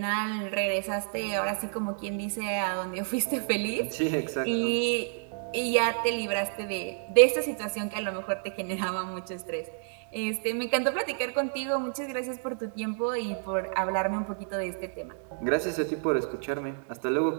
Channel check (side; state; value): left; silent; digital silence